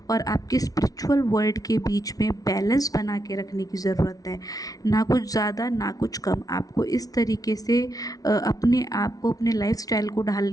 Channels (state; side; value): late; right; 0.18 ms